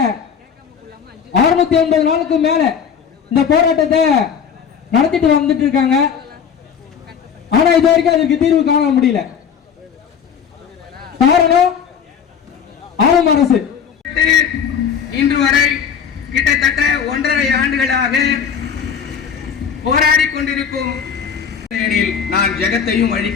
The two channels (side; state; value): right; quieter; 7.4 dB